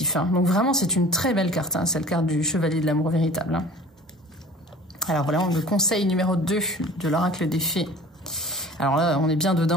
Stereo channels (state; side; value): normal; both; correlation 0.44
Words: Donc vraiment, c'est une très belle carte. C'est la carte du chevalier de l'amour véritable. Alors voilà, le conseil numéro 2 de l'oracle des fées. Alors là, on est bien